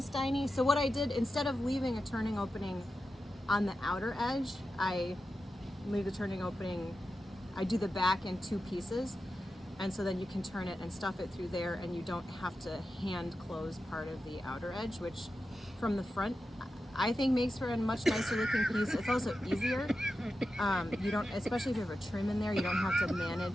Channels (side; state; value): both; normal; correlation 0.91